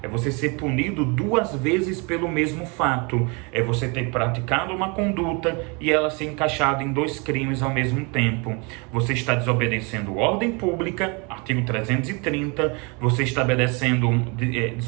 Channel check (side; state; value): left; quieter; 30.9 dB